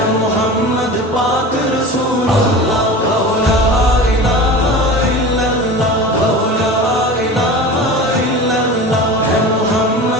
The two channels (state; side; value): normal; both; correlation 0.33